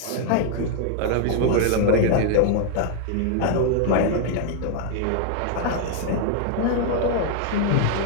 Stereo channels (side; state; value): both; different; correlation 0.00